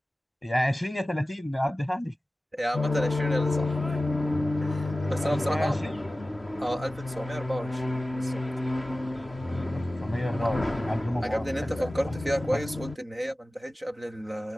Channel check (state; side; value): normal; both; correlation 0.96